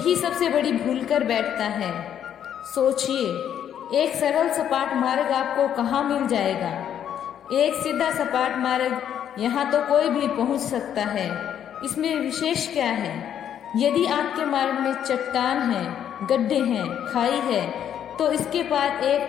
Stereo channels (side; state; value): right; quieter; 9.6 dB